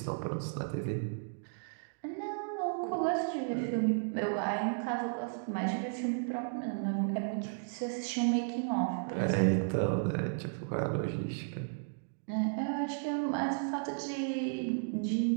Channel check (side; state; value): left; silent; digital silence